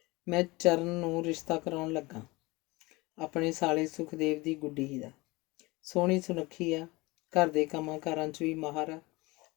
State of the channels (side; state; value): right; quieter; 23.0 dB